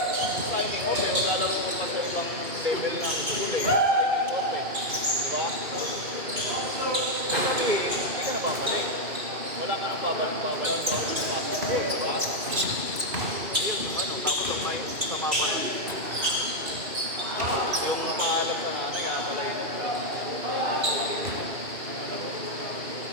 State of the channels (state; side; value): late; left; 2.6 ms